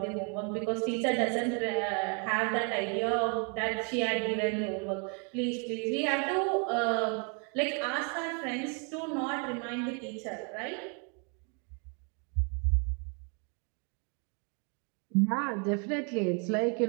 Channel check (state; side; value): quieter; left; 37.4 dB